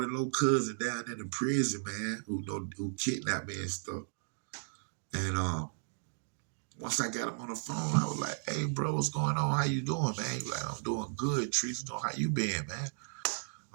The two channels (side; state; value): left; silent; digital silence